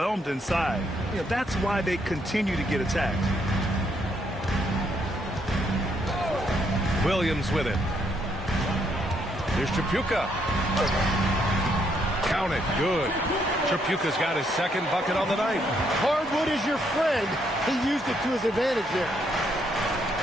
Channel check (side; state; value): both; normal; correlation 0.73